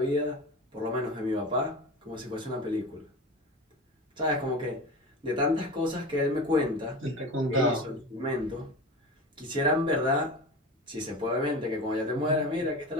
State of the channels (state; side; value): normal; both; correlation 0.30